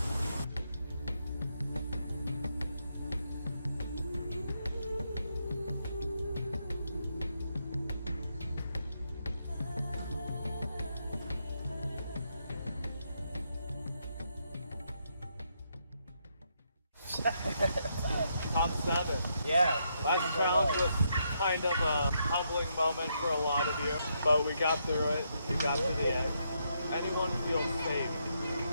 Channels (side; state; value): both; inverted; correlation -0.78